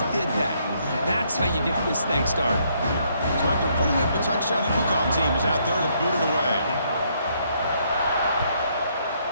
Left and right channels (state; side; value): inverted; both; correlation -0.71